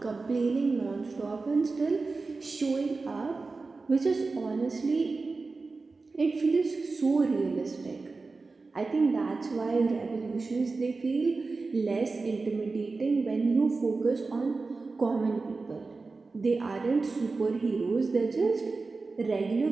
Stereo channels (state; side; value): quieter; left; 3.9 dB